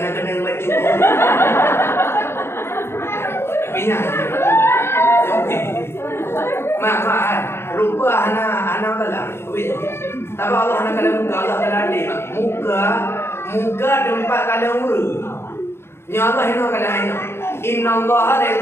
kena maju. Tapi nya, okey. Mak, rupa hana kalah. Tapi Allah hana kalah muka, Allah kalah adik. Muka tempat kalah urut. Nya Allah hina kalah hina. Inna Allah la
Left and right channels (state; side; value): late; right; 0.12 ms